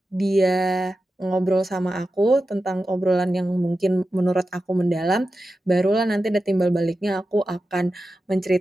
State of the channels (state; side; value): normal; both; correlation 0.92